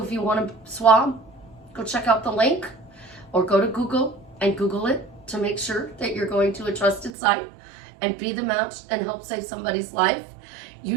if you want to swab, go check out the link or go to Google and Google it to make sure that you're going to a trusted site and be the match and help save somebody's life.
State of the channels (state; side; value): drops out; left; at 7.1 s